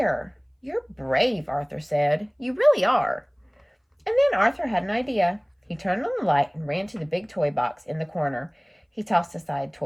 You're brave, Arthur said. You really are. And then Arthur had an idea. He turned on the light and ran to the big toy box in the corner. He tossed aside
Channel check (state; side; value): identical; both; correlation 1.00